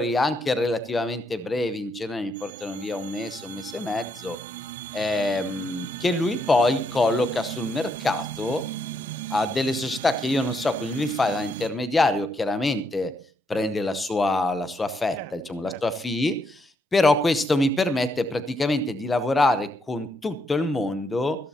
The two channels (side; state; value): both; normal; correlation 0.76